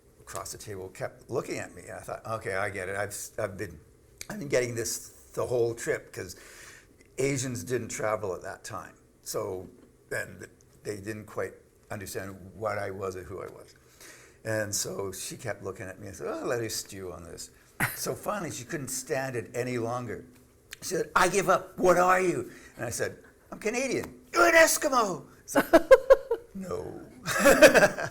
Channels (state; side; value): identical; both; correlation 1.00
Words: across the table kept looking at me, and I thought, okay, I get it. I've been getting this the whole trip, because Asians didn't travel at that time. So, and they didn't quite understand what I was or who I was. And so she kept looking at me and said, oh, let her stew on this. So finally, she couldn't stand it any longer. She said, I give up. What are you? And I said, I'm Canadian. You're an Eskimo. I said, no,